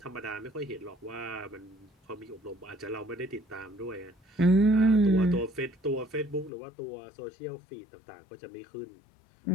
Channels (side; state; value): right; drops out; at 6.5 s